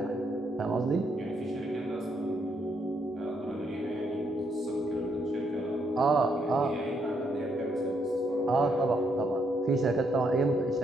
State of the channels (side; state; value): both; normal; correlation 0.75